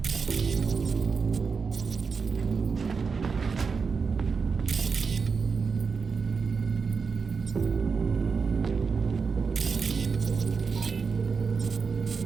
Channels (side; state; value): left; quieter; 5.2 dB